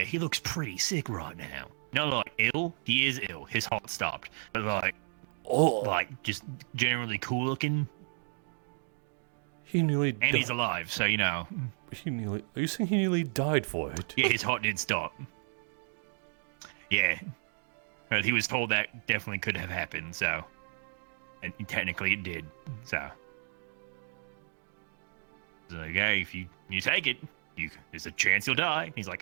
he looks pretty sick right now. Not like ill. He is ill. His heart stopped. But like just generally cool looking. He nearly. And he's alive, so you know. Are you saying he nearly died for it? Yeah, his heart did stop. Yeah. But he was told that definitely could have happened, so. And technically it did, so. It's like, hey, if you take it, there's a chance you'll die. He's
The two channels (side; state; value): left; silent; 56 dB below the other